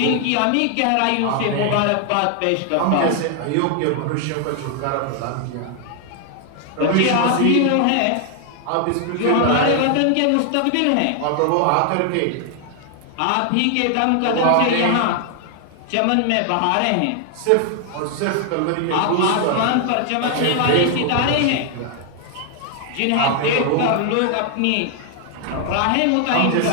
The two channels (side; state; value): both; different; correlation 0.00